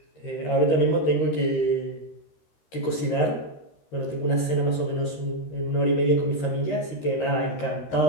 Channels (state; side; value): late; right; 13 ms